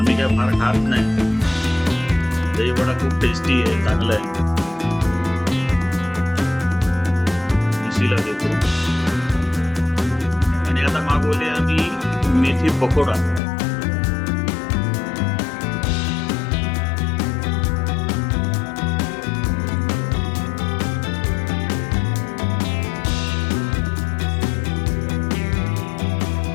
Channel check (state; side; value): drops out; right; at 13.4 s